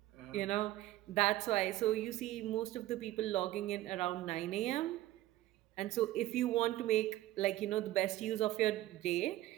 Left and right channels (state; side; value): quieter; left; 15.4 dB